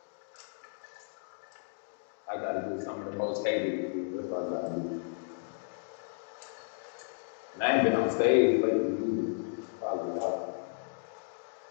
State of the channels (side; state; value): right; silent; digital silence